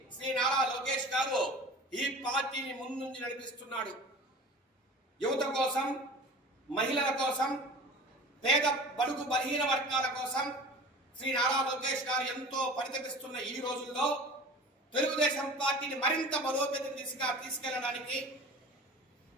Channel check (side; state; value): both; normal; correlation 0.39